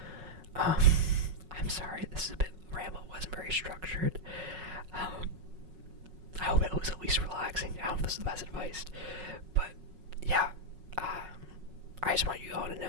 I'm sorry, this is a bit ramble. It wasn't very structured. I hope it was at least relaxing. I hope this is the best advice. But yeah, I just want you all to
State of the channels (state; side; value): late; left; 5.4 ms